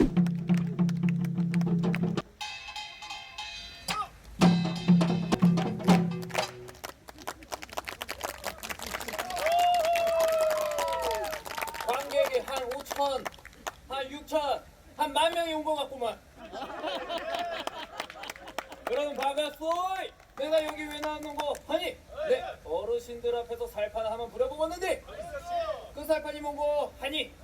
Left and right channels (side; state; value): both; identical; correlation 1.00